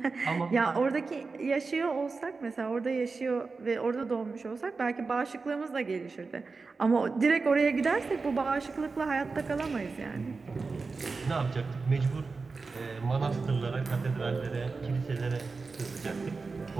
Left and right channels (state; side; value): quieter; left; 4.3 dB